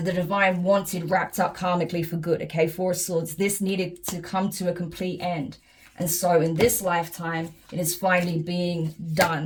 the divine wanted wrapped up karmically for good, okay? Four of Swords. This needed to come to a complete end. And so in this lifetime, it is finally being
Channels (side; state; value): both; identical; correlation 1.00